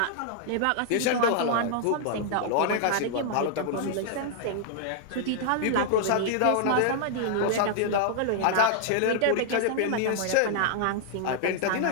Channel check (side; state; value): both; different; correlation -0.01